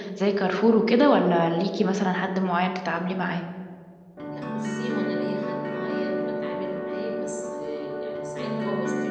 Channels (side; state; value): both; identical; correlation 1.00